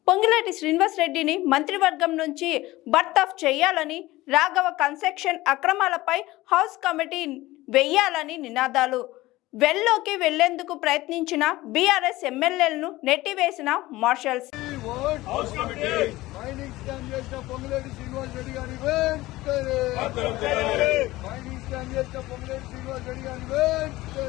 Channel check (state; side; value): quieter; right; 18.3 dB